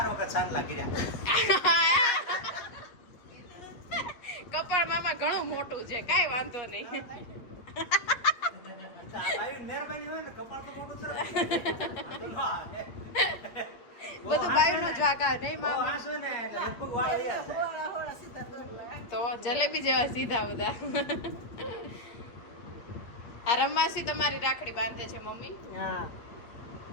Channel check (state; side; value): late; right; 8.4 ms